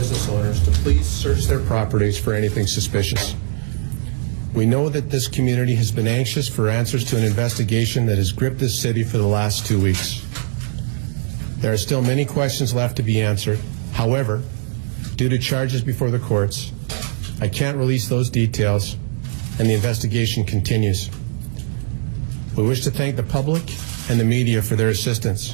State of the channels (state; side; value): silent; left; digital silence